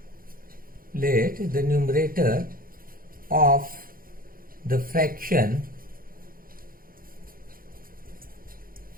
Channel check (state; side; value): late; left; 0.42 ms